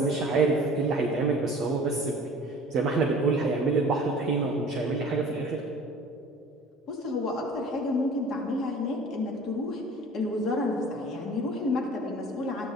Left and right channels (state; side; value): normal; both; correlation 0.45